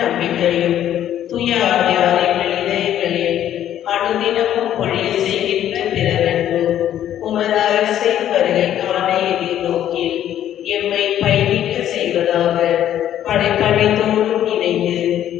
தூய ஆவியாரின் இதயங்களில் அனுதினமும் பொழிய செய்கின்ற பிறரன்பு உமது அரசின் வருகைக்கான எதிர்நோக்கில் எம்மை பயணிக்க செய்வதாக படைப்படைத்தோடும் இணைந்து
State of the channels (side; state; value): right; quieter; 11.2 dB